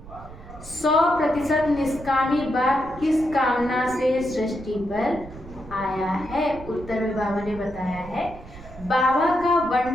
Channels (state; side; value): noise; right; rumble, 16 dB below the sound